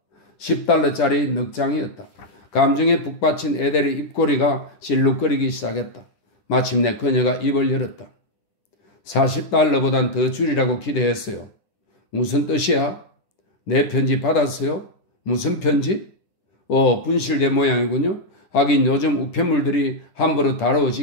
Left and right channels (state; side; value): late; right; 10 ms